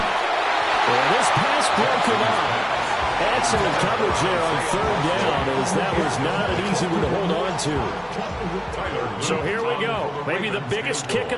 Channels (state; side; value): identical; both; correlation 1.00